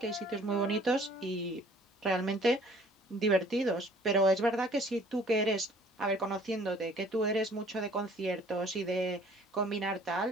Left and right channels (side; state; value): both; normal; correlation 0.54